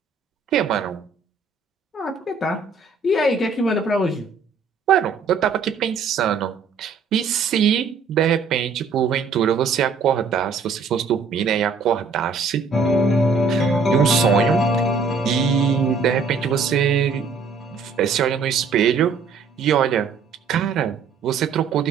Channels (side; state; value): left; quieter; 4.7 dB